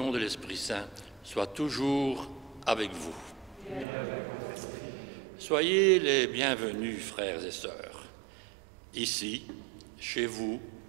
de l'Esprit Saint soient toujours avec vous. Soyez les bienvenus, frères et sœurs, ici, chez vous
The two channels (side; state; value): left; drops out; at 3.9 s